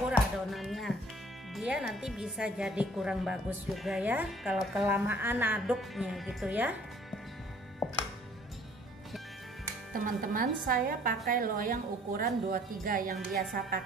adonannya, dia nanti bisa jadi kurang bagus juga ya kalau kelamaan aduknya gitu ya. Teman-teman, saya pakai loyang ukuran 23 yang biasa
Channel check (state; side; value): normal; both; correlation 0.56